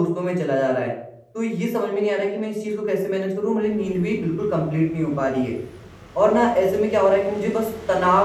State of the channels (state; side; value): identical; both; correlation 1.00